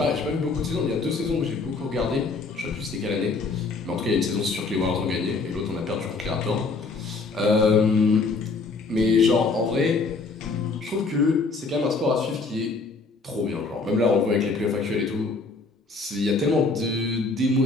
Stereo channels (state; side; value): quieter; right; 4.0 dB